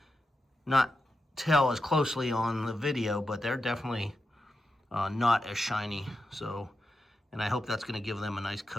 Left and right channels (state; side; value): normal; both; correlation 0.88